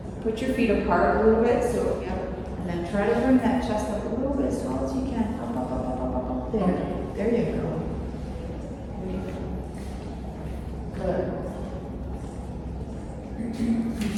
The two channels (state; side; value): identical; both; correlation 1.00